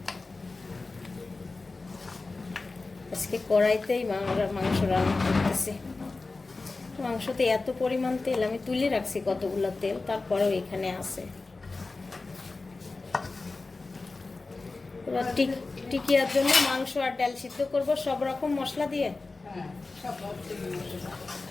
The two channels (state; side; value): quieter; right; 3.6 dB